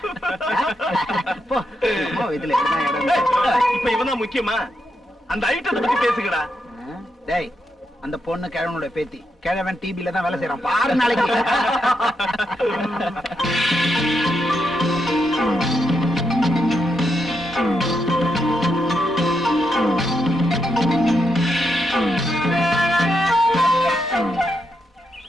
இதுல இப்ப இவன் முக்கியமா? அந்த ஐட்டத்தை பத்தி பேசுங்கடா. டேய், அந்த பொண்ணு கிழவனுடைய பேத்தி. கிழவன் டிபில தான் வேலை செய்யறான் பாரு நாளைக்கு.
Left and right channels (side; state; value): both; normal; correlation 0.82